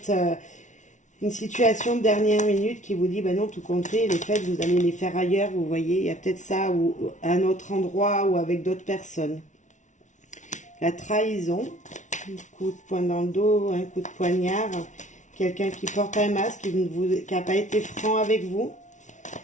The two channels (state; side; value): late; right; 0.36 ms